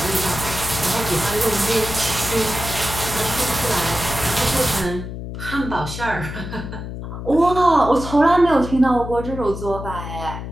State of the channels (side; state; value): left; noise; hum, 8 dB below the sound